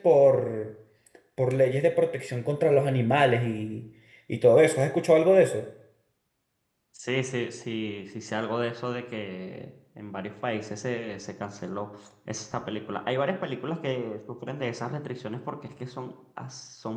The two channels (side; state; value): both; identical; correlation 1.00